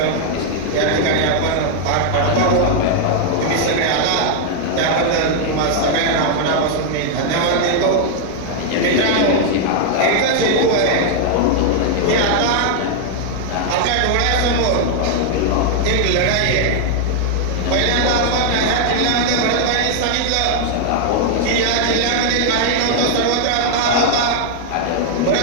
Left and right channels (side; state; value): both; different; correlation 0.00